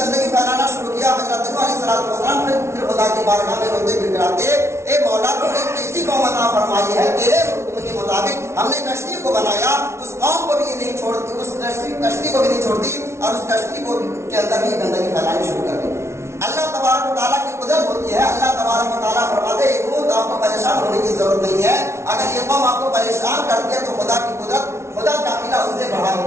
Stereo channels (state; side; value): late; left; 0.13 ms